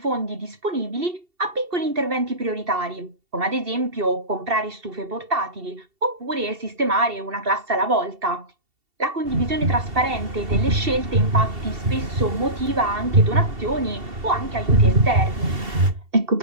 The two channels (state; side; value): late; left; 2.7 ms